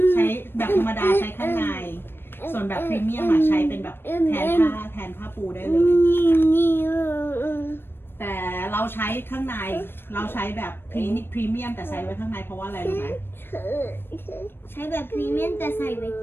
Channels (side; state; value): right; late; 0.10 ms